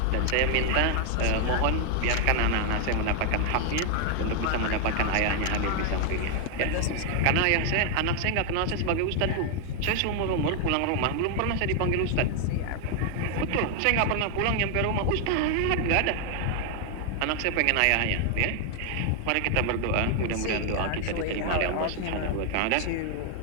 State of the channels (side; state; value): both; different; correlation 0.00